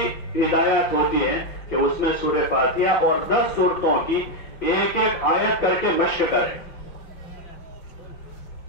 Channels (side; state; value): right; late; 5.9 ms